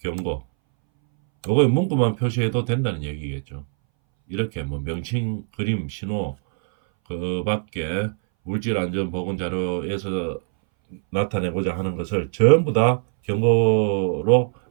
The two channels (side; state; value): left; silent; 62 dB below the other